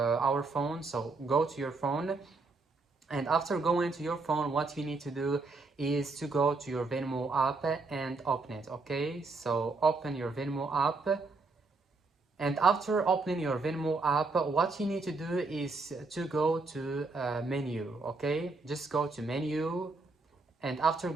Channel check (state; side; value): quieter; left; 3.7 dB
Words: our phone. So go to your phone, and after going to your phone, what you need to do is to go to your Venmo app and open it. Okay, so open your Venmo app. And after opening your Venmo app, what you need to do is to go to menu. Okay, just go to menu. And after